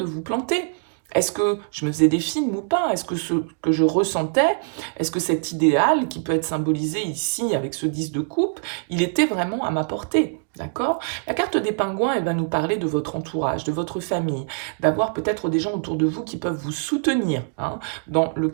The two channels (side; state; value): left; silent; digital silence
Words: vous planter. Est-ce que je me faisais des films ou pas? Est-ce que ce que je ressentais, est-ce que cet idéal qui peut être symbolisé ici avec ce 10 de coupe, il était vraiment à ma portée? D'accord? La carte des pingouins, elle va nous parler de votre entourage, de votre famille, d'avoir peut-être des gens autour de vous qui peuvent vous soutenir hein, dans le